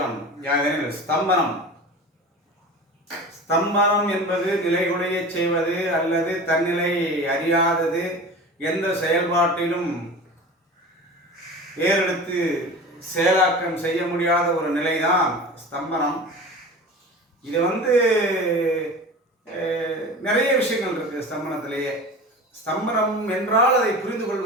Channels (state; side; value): normal; both; correlation 0.35